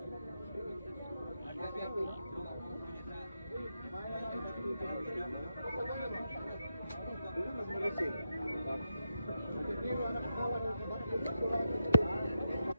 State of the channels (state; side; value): inverted; both; correlation -0.86